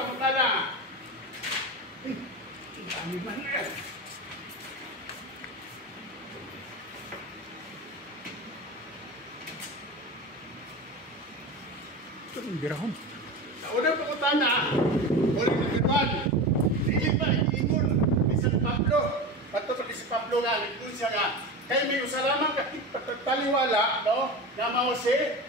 Birahon. Una pangutana. Uli na gano'n. Dili pa nag-iingon. Bisan Pablo. Bato pa si Pablo nga. Nag-iingon siya nga. Kaya may usalaman kapit pataliwala, no? Na mao si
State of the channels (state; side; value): normal; both; correlation 0.26